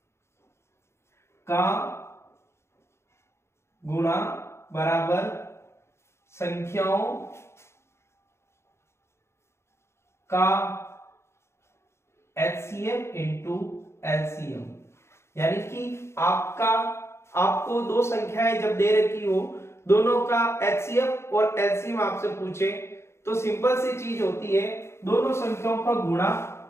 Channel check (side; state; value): right; late; 0.13 ms